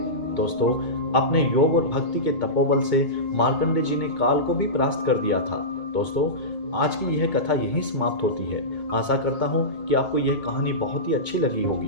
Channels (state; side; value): late; right; 2.2 ms